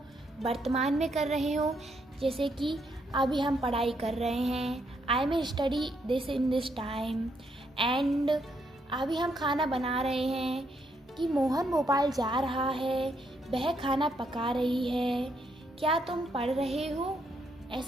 वर्तमान में कर रहे हो। जैसे कि अभी हम पढ़ाई कर रहे हैं, I may study this in this time. And अभी हम खाना बना रहे हैं कि मोहन भोपाल जा रहा है, वह खाना पका रही है, क्या तुम पढ़ रहे हो।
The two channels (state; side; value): normal; both; correlation 0.75